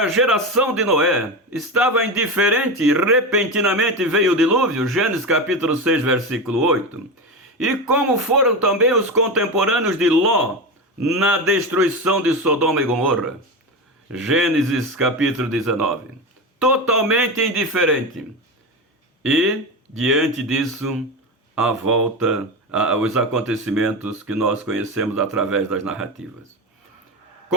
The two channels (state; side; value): normal; both; correlation 0.19